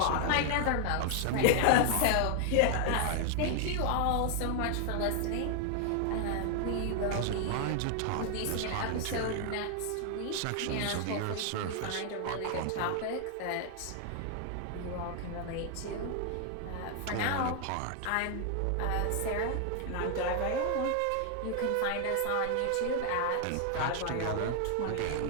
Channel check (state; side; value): different; both; correlation 0.00